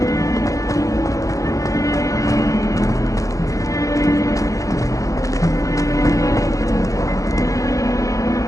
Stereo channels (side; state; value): right; late; 0.16 ms